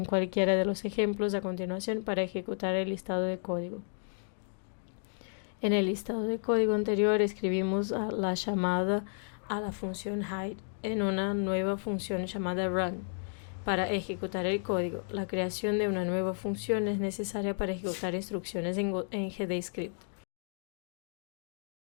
cualquiera de los ejemplos a continuación para ejecutar el listado de código. En el listado de código anterior escribimos la llamada a la función hide en una nueva función llamada run. Para ejecutar el código, la creación de una nueva función es necesaria para ejecutar instrucciones en GDScript.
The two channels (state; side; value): silent; right; digital silence